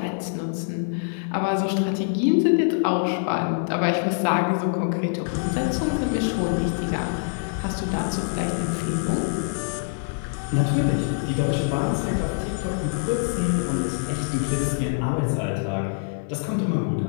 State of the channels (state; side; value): silent; right; digital silence